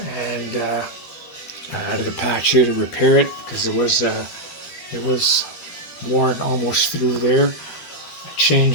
and I added a patch here to repair it because it was worn almost through there. I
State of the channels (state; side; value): late; right; 13 ms